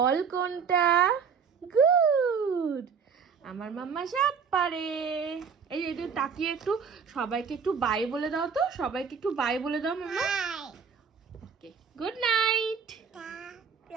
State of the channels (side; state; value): left; quieter; 6.2 dB